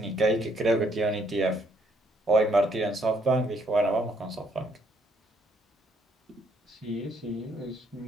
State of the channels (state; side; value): normal; both; correlation 0.68